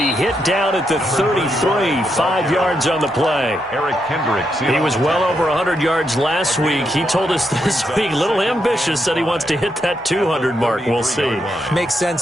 hit down at the 33, 5 yards on the play. Eric Kendricks. He was well over 100 yards last week. He told us this week, a little ambitious, said he wants to hit that 200 mark. We'll see. Makes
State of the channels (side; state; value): both; normal; correlation 0.81